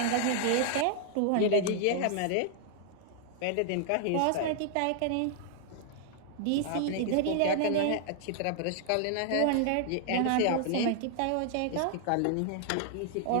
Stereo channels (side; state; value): both; different; correlation 0.00